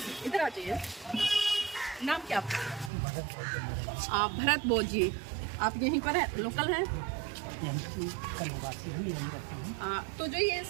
इधर आ जाइए। नाम क्या आपका? भरत बोध जी। आप यहीं पर है, लोकल हैं? तो जो ये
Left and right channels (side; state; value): left; drops out; at 2.9 s